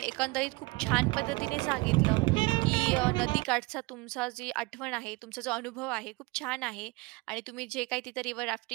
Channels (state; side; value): quieter; left; 24.3 dB